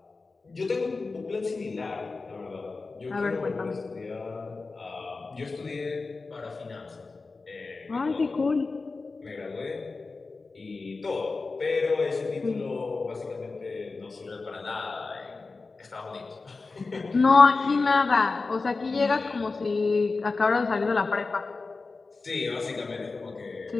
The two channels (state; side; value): quieter; right; 3.9 dB